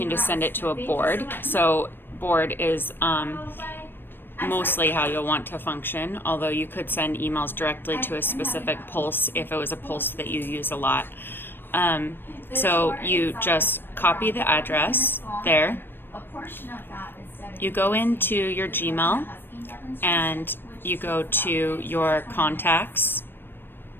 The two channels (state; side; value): late; right; 0.098 ms